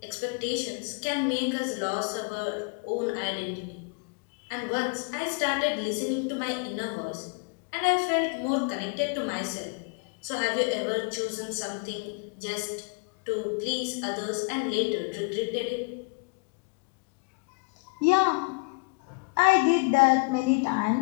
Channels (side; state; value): right; quieter; 31.9 dB